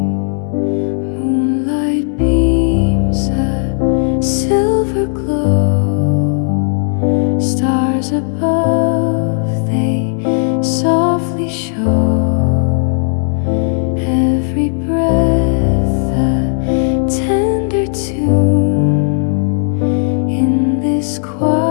Moonlight beams a silver glow. Stars above, they softly show. Every breath a tender tune. In this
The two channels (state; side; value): silent; right; 57 dB below the other